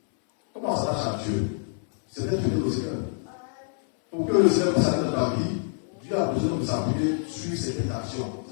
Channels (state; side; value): silent; right; 61 dB below the other